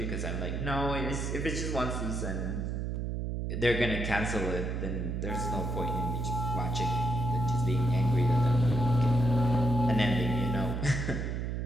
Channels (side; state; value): right; noise; hum, 2 dB below the sound